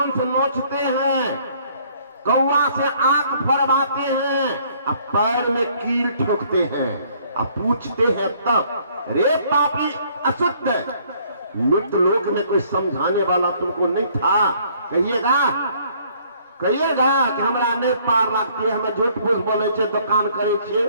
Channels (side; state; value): both; inverted; correlation -0.62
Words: नोचते हैं, कौवा से आंख फरवाते हैं, अब पैर में कील ठोकते हैं, अब पूछते हैं तब, रे पापी अशुद्ध, मृत लोक में कोई समझाने वाला तुमको नहीं था? कहिएगा कहिएगा कि हमरा नहीं पार लगती है, हमें झूठ फूस बोले छे, दुकान करे छे।